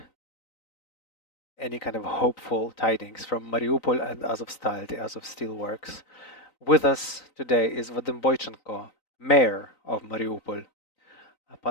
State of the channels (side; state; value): right; late; 3.9 ms